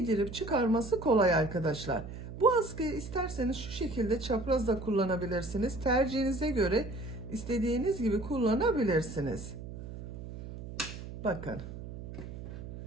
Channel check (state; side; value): noise; right; hum, 10 dB below the sound